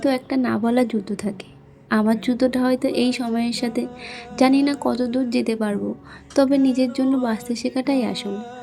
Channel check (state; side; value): identical; both; correlation 1.00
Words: একটা না বলা যুদ্ধ থাকে। আমার যুদ্ধটা হয়তো এই সময়ের সাথে। জানি না কত দূর যেতে পারবো, তবে নিজের জন্য বাঁচতে শেখাটাই আসল।